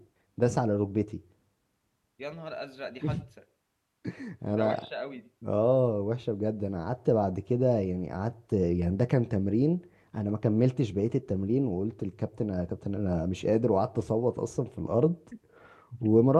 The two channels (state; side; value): identical; both; correlation 1.00